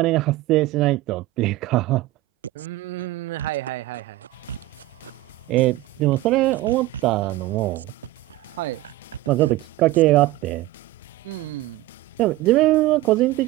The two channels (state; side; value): quieter; left; 17.3 dB